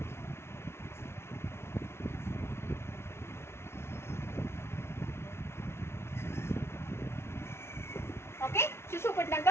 Okay శిశువు పుట్టినాక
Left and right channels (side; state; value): right; late; 0.12 ms